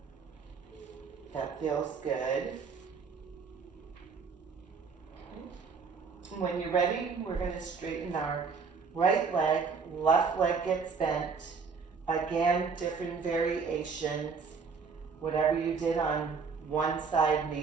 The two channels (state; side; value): quieter; left; 5.3 dB